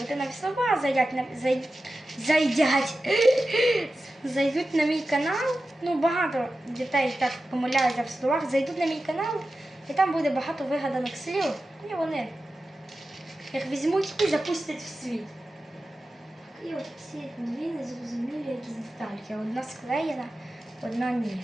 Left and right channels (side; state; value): both; normal; correlation 0.93